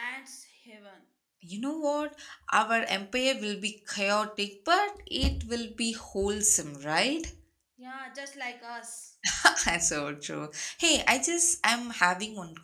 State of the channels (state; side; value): identical; both; correlation 1.00